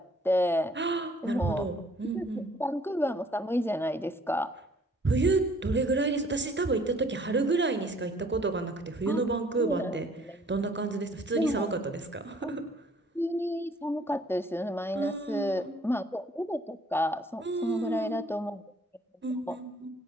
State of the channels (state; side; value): normal; both; correlation 0.58